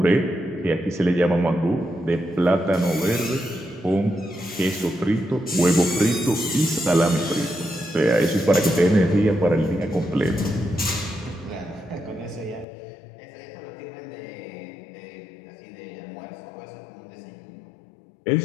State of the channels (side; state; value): right; drops out; at 12.7 s